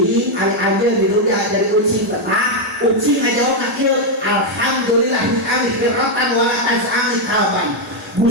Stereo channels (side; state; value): both; normal; correlation 0.01